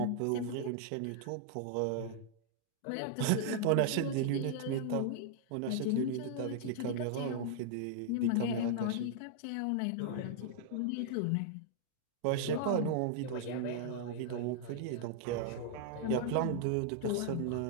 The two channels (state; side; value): different; both; correlation -0.01